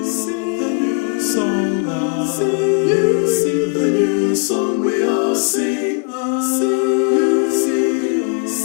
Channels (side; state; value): right; quieter; 37.9 dB